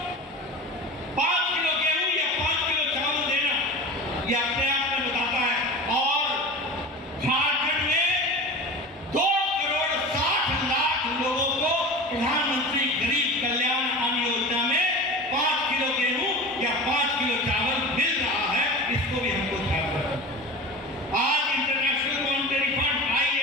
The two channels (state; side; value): normal; both; correlation 0.32